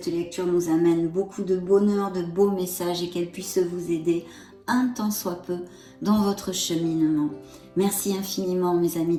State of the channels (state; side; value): identical; both; correlation 1.00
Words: lecture nous amène beaucoup de bonheur, de beaux messages et qu'elle puisse vous aider un tant soit peu dans votre cheminement. Merci infiniment mes